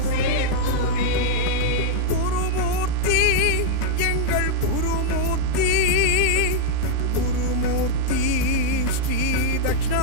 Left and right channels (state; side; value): different; both; correlation -0.01